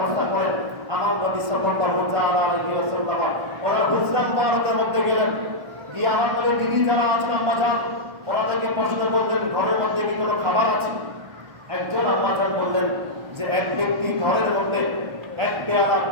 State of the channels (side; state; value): left; late; 1.4 ms